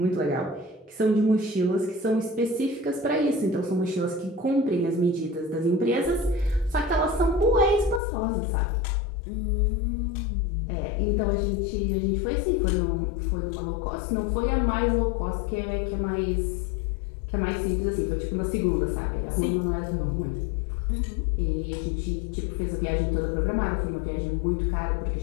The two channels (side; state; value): right; drops out; at 8.0 s